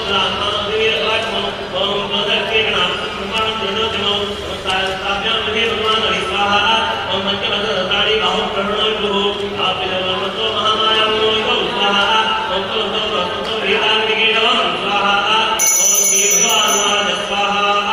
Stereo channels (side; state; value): both; identical; correlation 1.00